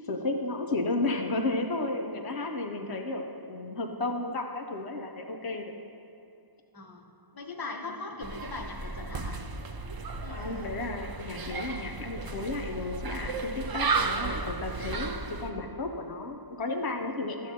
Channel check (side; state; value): left; late; 1.0 ms